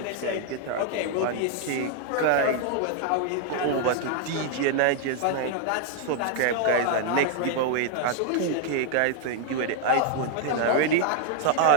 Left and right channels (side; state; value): both; different; correlation 0.00